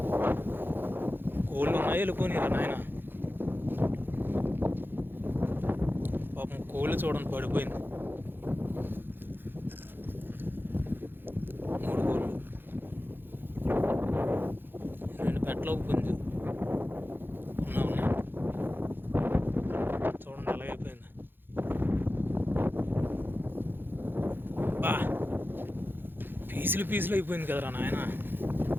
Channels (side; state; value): left; late; 0.099 ms